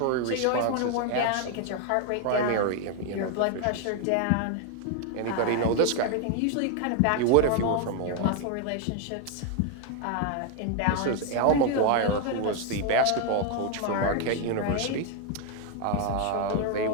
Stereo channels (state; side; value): different; both; correlation 0.00